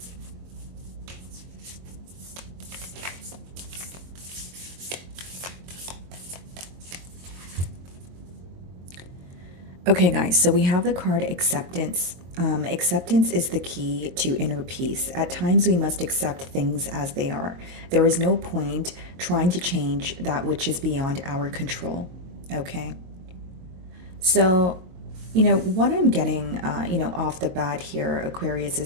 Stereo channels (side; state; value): left; late; 23 ms